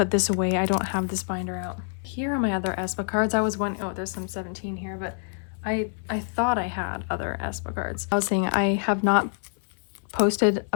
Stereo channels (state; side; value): silent; right; digital silence